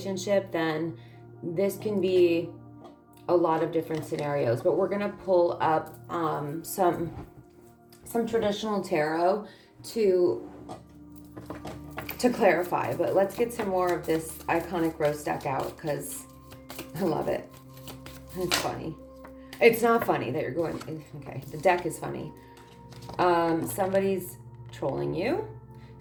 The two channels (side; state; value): both; identical; correlation 1.00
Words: then this can be a lot of different scenarios. But we're going to pull up some traditional tarot to clarify. But let's get some more of this iconic rose deck out, because I love it. It's funny. It's not funny that you're going, okay, the deck is funny. Somebody's trolling you.